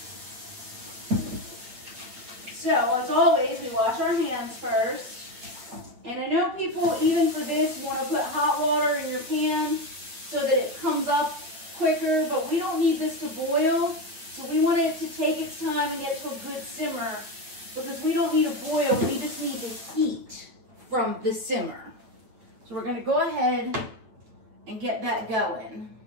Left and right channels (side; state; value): left; late; 8.9 ms